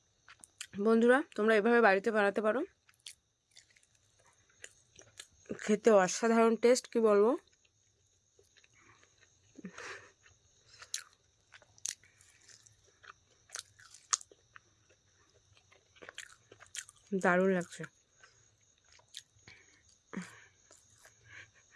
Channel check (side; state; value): both; identical; correlation 1.00